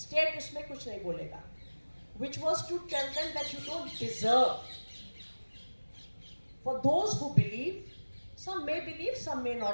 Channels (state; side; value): inverted; both; correlation -1.00